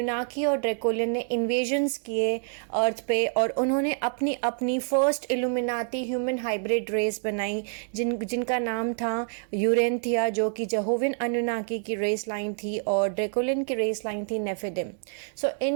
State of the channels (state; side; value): silent; left; digital silence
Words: और ड्रैकोलियन ने इन्वेजन्स किए अर्थ पे और उन्होंने अपनी अपनी first Illuminati human hybrid race बनाई जिनका नाम था यूरेंथिया, जो कि जेहोविन अनुनाकी की रेस लाइन थी और ड्रैकोलियन की रेस लाइन थी नेफिडिम। सो